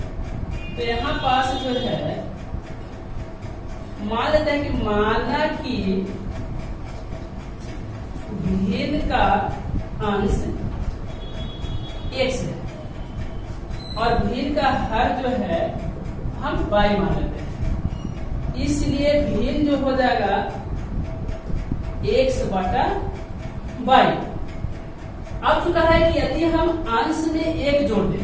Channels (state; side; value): identical; both; correlation 1.00